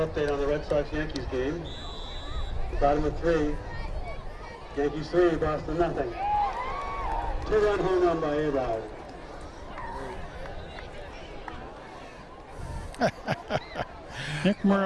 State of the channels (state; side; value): identical; both; correlation 1.00